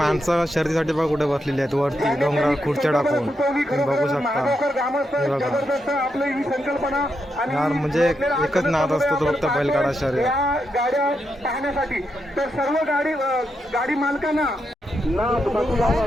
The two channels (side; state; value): both; normal; correlation 0.83